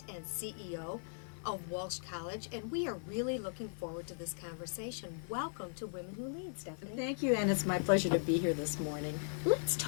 and CEO of Walsh College, and we are really looking forward to this conversation. Welcome to Women Who Lead, Stephanie. Thank you, and it's my pleasure to be here this morning. Let's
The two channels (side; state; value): right; silent; digital silence